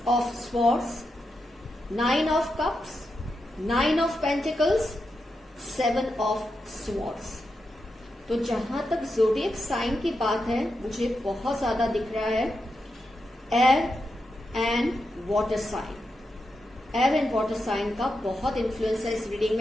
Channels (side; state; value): both; normal; correlation 0.87